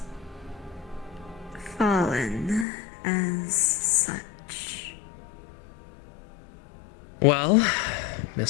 fallen as such? Well,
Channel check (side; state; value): right; drops out; at 2.7 s